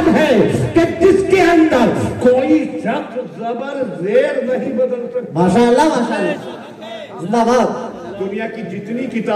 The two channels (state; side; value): identical; both; correlation 1.00